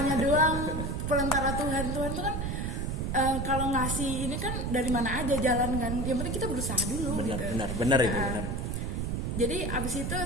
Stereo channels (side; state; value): right; noise; rumble, 2 dB below the sound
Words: doang, perantara Tuhan tuh kan. Kalau ngasih ini kan dari mana aja jalan kan, yang penting kita berusaha dulu. Benar itu benar. Jadi abis itu